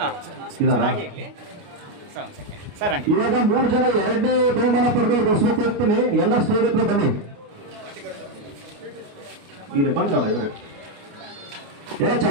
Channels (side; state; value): left; late; 29 ms